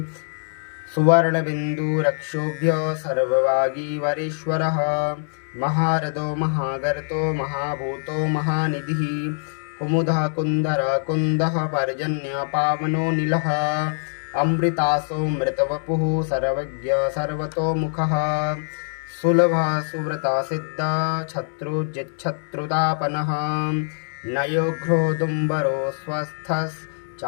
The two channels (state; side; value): silent; right; 63 dB below the other